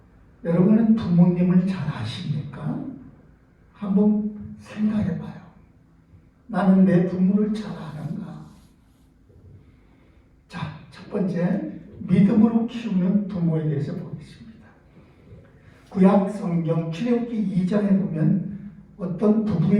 여러분은 부모님을 잘 아십니까? 한번 생각해 봐요. 나는 내 부모를 잘 아는가? 자, 첫 번째, 믿음으로 키우는 부모에 대해서 보겠습니다. 구약 성경 출애굽기 2장에 보면 어떤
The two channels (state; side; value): identical; both; correlation 1.00